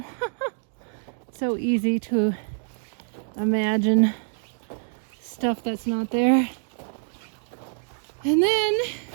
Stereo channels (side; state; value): left; silent; digital silence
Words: So easy to imagine stuff that's not there. And then,